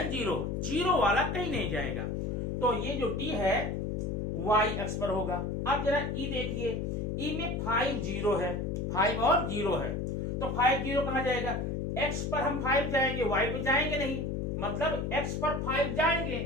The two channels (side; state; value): left; noise; hum, 1 dB below the sound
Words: 0, 0 वाला कहीं नहीं जाएगा। तो ये जो डी है वाई अक्ष पर होगा। अब जरा ई देखिए, ई में 5 0 है, 5 और 0 है, तो 5 0 कहां जाएगा, एक्स पर हम 5 जाएंगे, वाई पे जाएंगे नहीं, मतलब एक्स पर 5 जाएंगे,